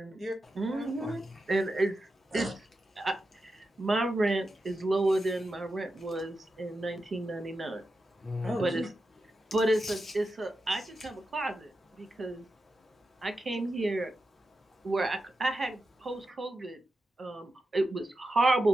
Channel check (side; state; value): both; normal; correlation 0.90